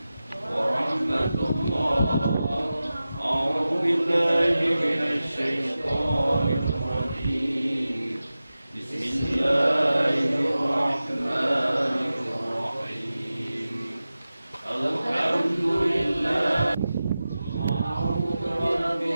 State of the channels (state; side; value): inverted; both; correlation -0.95